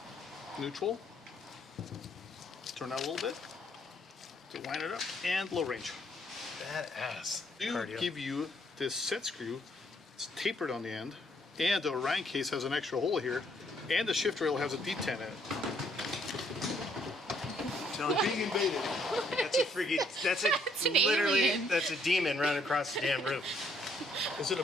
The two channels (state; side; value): normal; both; correlation 0.68